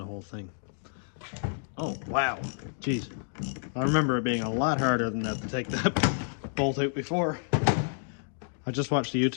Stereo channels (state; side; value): silent; right; 58 dB below the other